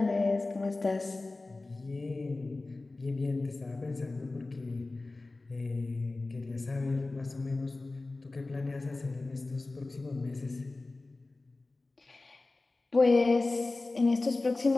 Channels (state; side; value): quieter; right; 3.2 dB